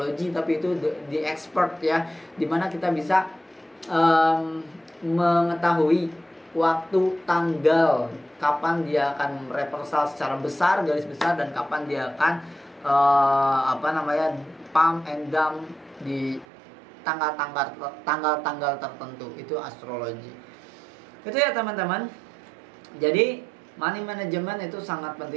tapi itu the expert ya, dimana kita bisa mengetahui waktu, tanggal, kapan dia akan reversal secara besar, garis besar, dan kapan dia akan pump and dump di tanggal tertentu. Itu astrologi. Itu ya teman-teman. Jadi money management itu sangat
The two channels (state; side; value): drops out; left; at 16.4 s